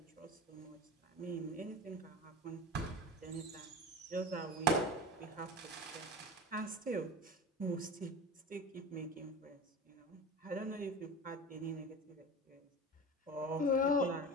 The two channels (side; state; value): both; normal; correlation 0.31